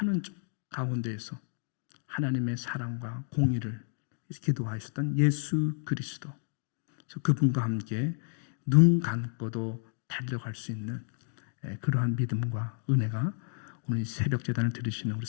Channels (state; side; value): silent; right; digital silence